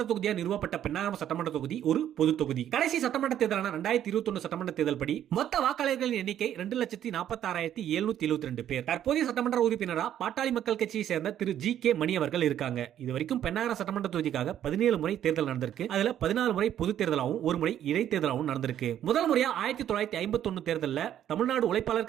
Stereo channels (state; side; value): quieter; left; 10.8 dB